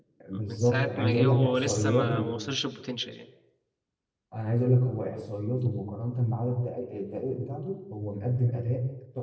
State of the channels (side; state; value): both; identical; correlation 1.00